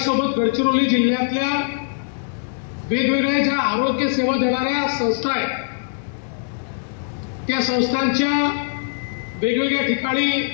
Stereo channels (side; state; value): right; silent; digital silence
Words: गडचिरोली जिल्ह्यातल्या वेगवेगळ्या ज्या आरोग्य सेवा देणाऱ्या संस्था आहेत त्या संस्थांच्या वेगवेगळ्या ठिकाणी